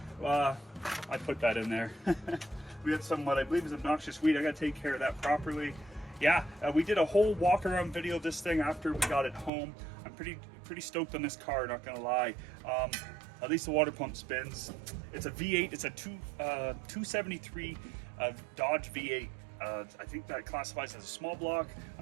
I put that in there. We had some, what I believe is obnoxious weed. I got to take care of that properly. Yeah, we did a whole walk around video of this thing after we got it home. I'm pretty stoked on this car, not gonna lie. At least the water pump spins. It's a V8, it's a 273 Dodge V8. I think that classifies as a small block.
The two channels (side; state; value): left; drops out; at 9.5 s